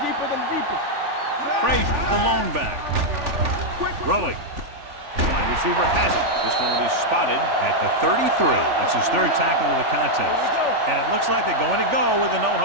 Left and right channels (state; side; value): late; left; 3.4 ms